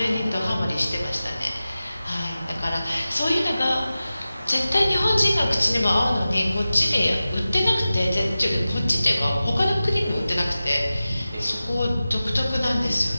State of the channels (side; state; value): both; inverted; correlation -0.95